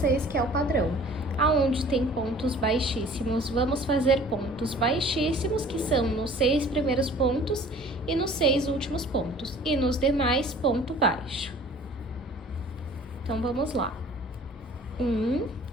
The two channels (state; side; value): normal; both; correlation 0.49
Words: que é o padrão. Aonde tem pontos baixíssimos, vamos fazer pontos baixíssimos, que são nos 6 primeiros pontos e nos 6 últimos pontos. E nos demais, ponto baixo. Então, vamos lá. 1,